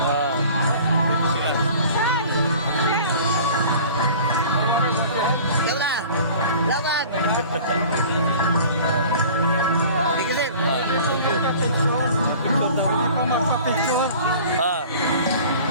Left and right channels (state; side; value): inverted; both; correlation -0.45